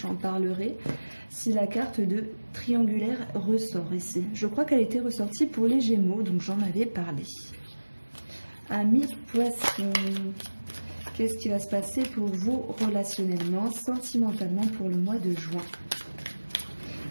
j'en parlerai, si la carte de triangulaire ressort ici. Je crois qu'elle était ressortie pour les Gémeaux, donc j'en avais parlé. Amis poissons, qu'est-ce qui va se passer pour vous relationnellement, sentimentalement pour le mois de juin?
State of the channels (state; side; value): inverted; both; correlation -1.00